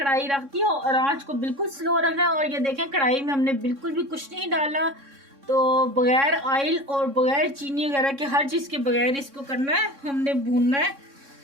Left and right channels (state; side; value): late; left; 3.6 ms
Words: रख दी और आंच को बिल्कुल स्लो रखना है। और ये देखें कढ़ाई में हमने बिल्कुल भी कुछ नहीं डाला। तो बगैर ऑयल और बगैर चीनी वगैरह के, हर चीज़ के बगैर इसको करना है, हमने भूनना है।